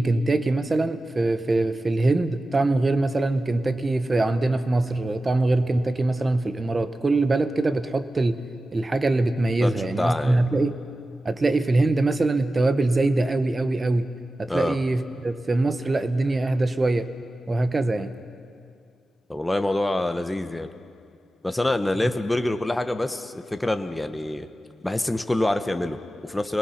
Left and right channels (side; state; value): both; normal; correlation 0.94